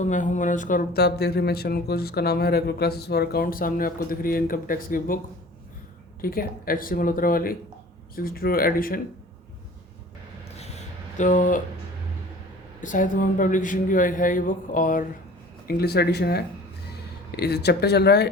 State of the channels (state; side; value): normal; both; correlation 0.45